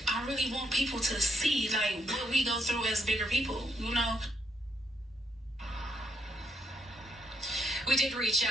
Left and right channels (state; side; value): normal; both; correlation 0.76